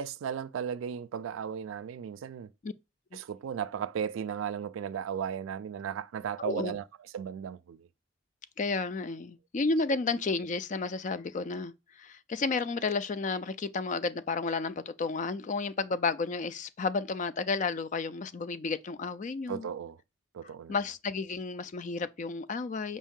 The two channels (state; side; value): normal; both; correlation 0.07